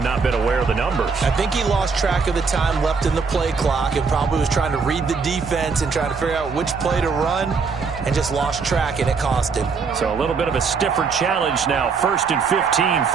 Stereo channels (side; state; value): left; quieter; 5.1 dB